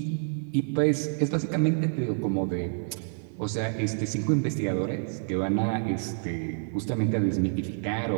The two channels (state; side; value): silent; left; digital silence